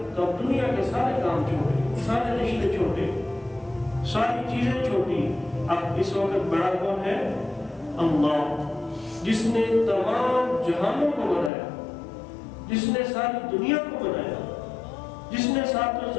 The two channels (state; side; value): drops out; right; at 11.5 s